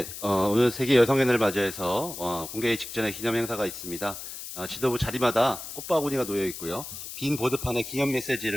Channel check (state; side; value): noise; left; hiss, 10 dB below the sound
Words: 오늘 세계 여성의 날을 맞이해서 공개회 직전에 기념 행사가 있습니다. 지도부 자리마다 꽃바구니가 놓여 있고요. 빈 보드판에 기념